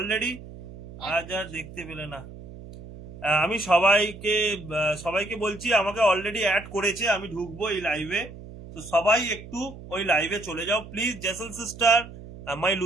আজ আর দেখতে পেলে না। আমি সবাইকে বলছি, আমাকে অলরেডি অ্যাড করেছে, আমি ঢুকবো এই লাইভে। তো সবাই একটু ওই লাইভে চলে যাও please. Jessel sister, my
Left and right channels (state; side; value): noise; right; hum, 15 dB below the sound